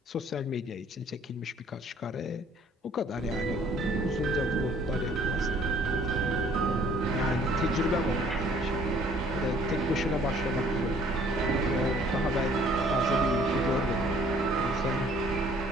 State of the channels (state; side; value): normal; both; correlation 0.58